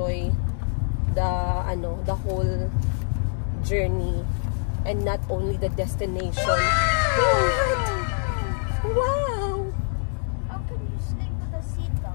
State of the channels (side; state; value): right; silent; digital silence